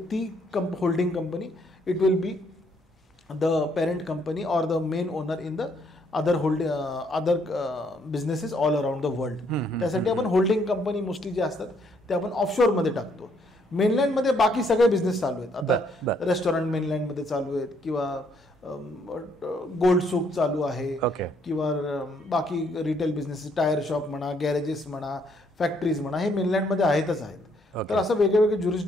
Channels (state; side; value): normal; both; correlation 0.69